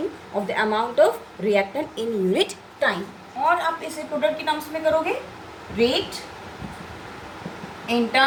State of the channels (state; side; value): identical; both; correlation 1.00